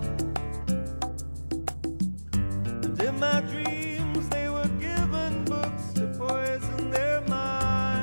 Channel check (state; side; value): inverted; both; correlation -1.00